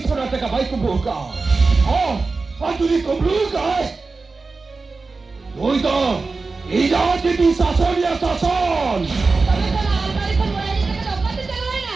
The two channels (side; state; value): left; quieter; 4.0 dB